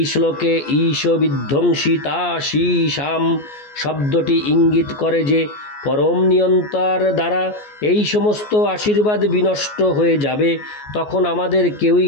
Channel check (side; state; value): right; late; 14 ms